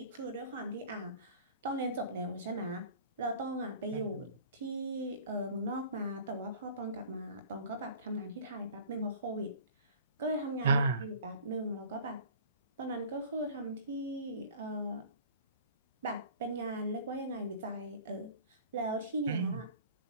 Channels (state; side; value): inverted; both; correlation -0.44